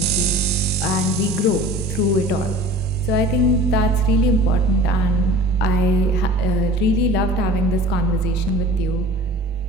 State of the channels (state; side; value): normal; both; correlation 0.42